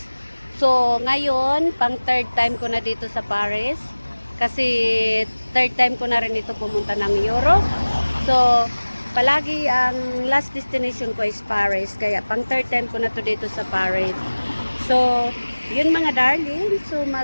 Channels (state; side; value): inverted; both; correlation -1.00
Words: So ngayon, pang third time ko na dito sa Paris. Kasi third time ko na rin ito pumunta ng Europe. So palagi ang last destination ko is Paris. Kaya pang third time ko na to dito sa Paris. So yun mga darling. So